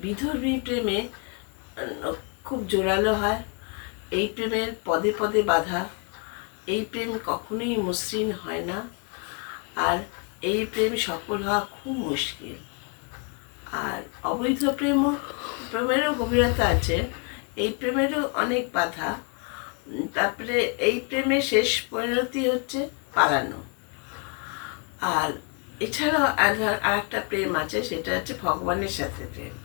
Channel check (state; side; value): quieter; right; 35.7 dB